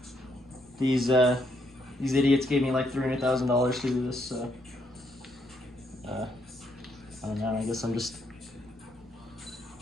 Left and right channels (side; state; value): right; noise; rumble, 30 dB below the sound